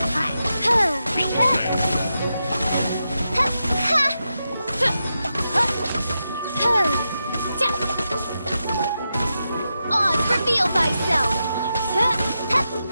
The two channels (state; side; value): inverted; both; correlation -0.88